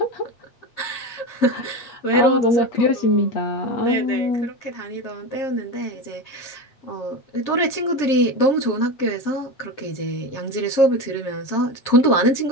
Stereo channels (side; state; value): right; late; 7.5 ms